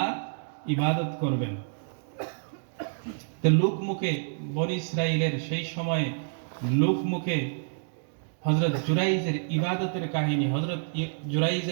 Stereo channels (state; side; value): silent; left; digital silence